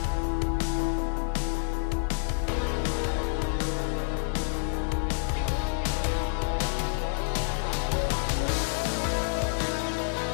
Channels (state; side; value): silent; right; digital silence